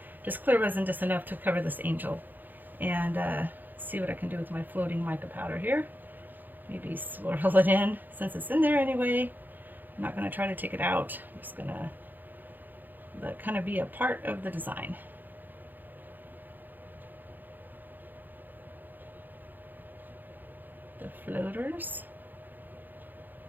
Just clear resin, just enough to cover this angel. And see what I can do with my floating mica powder here. Maybe swirl it in since it's in there anyway. I'm not going to try to take it out. I'm just going to let it kind of be a part of the design. The floaters.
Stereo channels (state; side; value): late; left; 0.087 ms